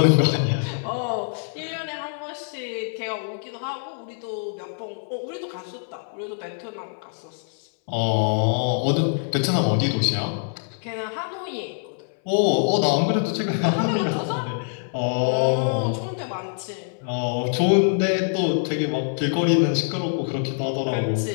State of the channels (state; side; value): silent; right; 62 dB below the other